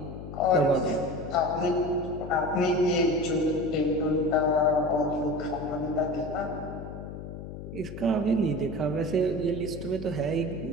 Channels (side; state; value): left; noise; hum, 10 dB below the sound